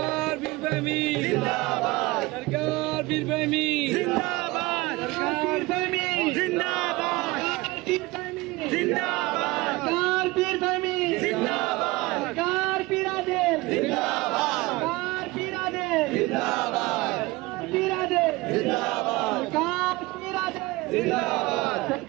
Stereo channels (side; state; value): left; quieter; 21.4 dB